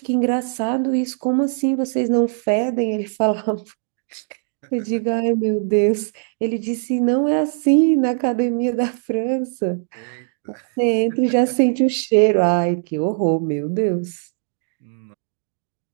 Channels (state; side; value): silent; left; 65 dB below the other